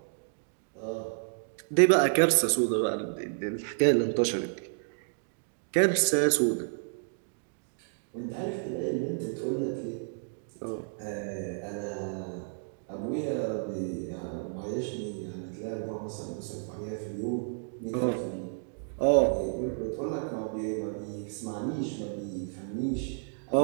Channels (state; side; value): silent; left; digital silence